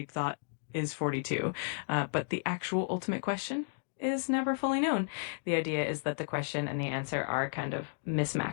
Thought is 42, but the actual ultimate question is never fully known. The idea is that the question and the answer are kind of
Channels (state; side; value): silent; right; digital silence